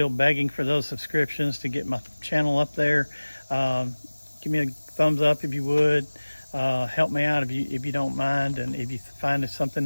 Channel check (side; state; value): both; inverted; correlation -1.00